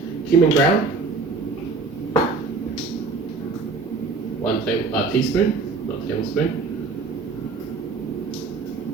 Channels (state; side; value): quieter; left; 4.2 dB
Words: Cumin ground. 1 teaspoon, not tablespoon.